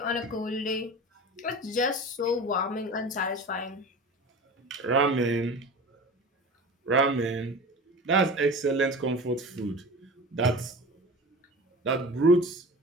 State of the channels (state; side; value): normal; both; correlation 0.35